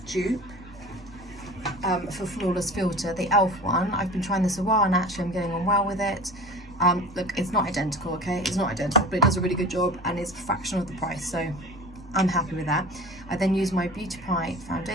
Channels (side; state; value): both; normal; correlation 0.38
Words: dupe for Flawless Filter, the e.l.f. one. I've been trying this a while and actually I'm getting on well with it. Look, it's not identical, okay? It's not identical, but it does a really good job and it's a fraction of the price, so I'm happy with that. I then use my Beauty Pie